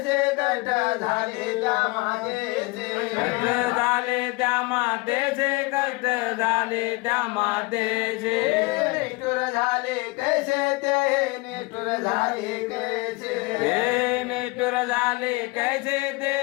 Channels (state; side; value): quieter; right; 24.9 dB